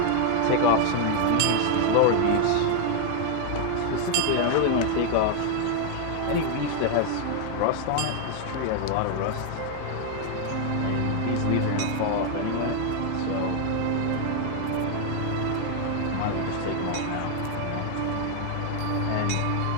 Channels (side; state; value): both; different; correlation 0.00